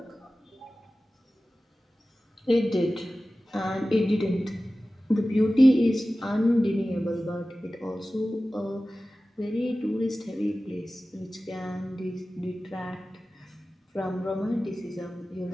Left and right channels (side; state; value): both; normal; correlation 0.96